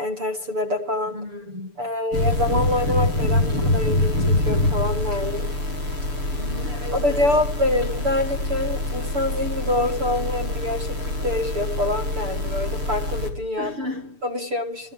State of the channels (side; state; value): left; late; 6.8 ms